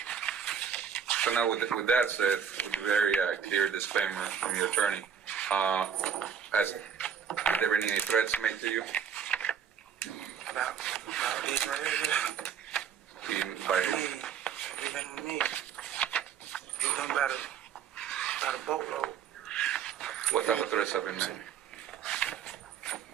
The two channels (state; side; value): quieter; left; 7.7 dB